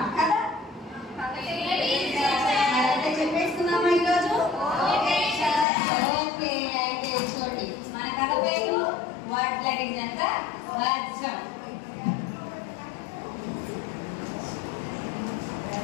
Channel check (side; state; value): right; drops out; at 5.7 s